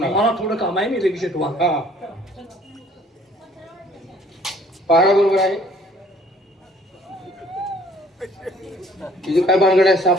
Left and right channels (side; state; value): both; normal; correlation 0.57